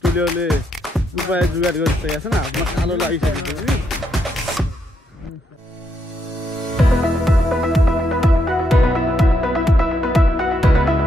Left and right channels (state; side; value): normal; both; correlation 0.78